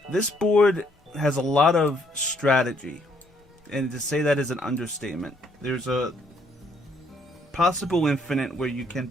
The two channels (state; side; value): normal; both; correlation 0.68